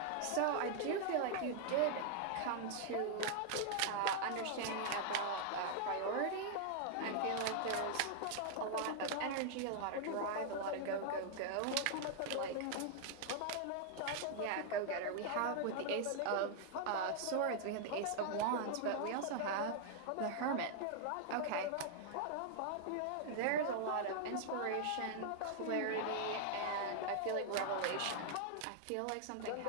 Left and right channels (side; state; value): both; different; correlation -0.01